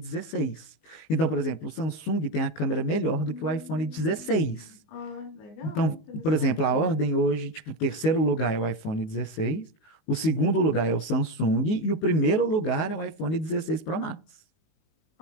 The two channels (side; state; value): right; late; 19 ms